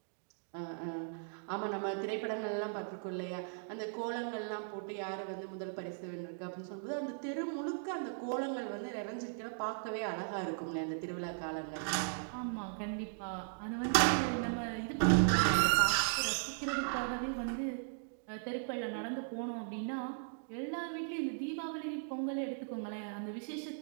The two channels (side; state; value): left; silent; digital silence